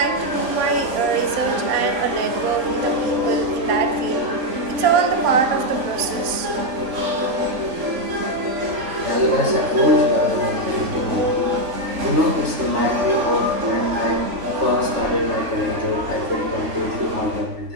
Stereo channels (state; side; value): late; left; 3.5 ms